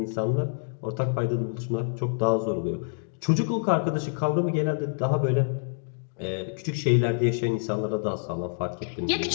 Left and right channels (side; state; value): right; silent; digital silence